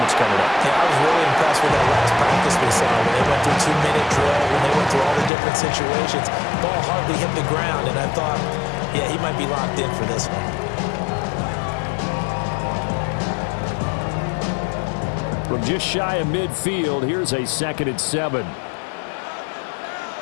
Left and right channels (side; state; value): right; drops out; at 5.3 s